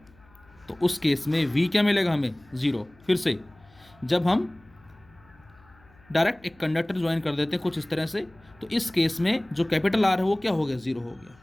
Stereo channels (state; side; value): noise; left; hum, 28 dB below the sound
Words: तो उस केस में V क्या मिलेगा हमें, ज़ीरो। फिर से जब हम डायरेक्ट एक कंडक्टर ज्वाइन कर देते हैं कुछ इस तरह से, तो इस केस में जो कैपिटल R है वो क्या हो गया, ज़ीरो हो गया।